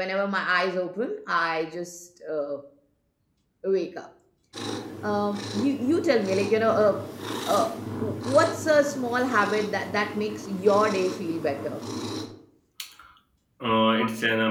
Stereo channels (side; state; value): both; identical; correlation 1.00